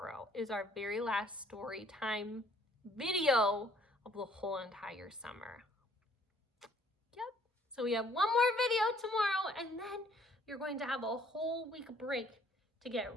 is our very last story time video of the whole entire summer. Yep. So we have one more video tomorrow, and then you're going to have a whole week break to get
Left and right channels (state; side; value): normal; both; correlation 0.61